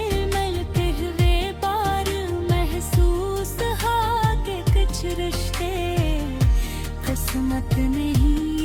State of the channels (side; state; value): both; identical; correlation 1.00